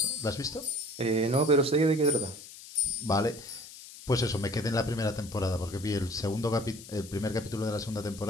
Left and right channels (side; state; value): left; noise; hiss, 16 dB below the sound